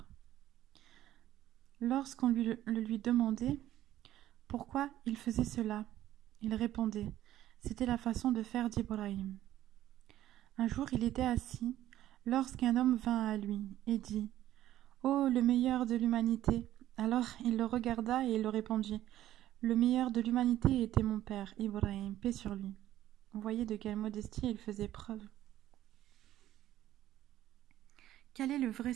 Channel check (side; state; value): left; quieter; 13.3 dB